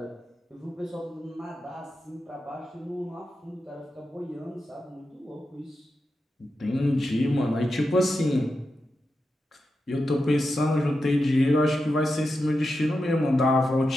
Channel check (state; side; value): normal; both; correlation 0.89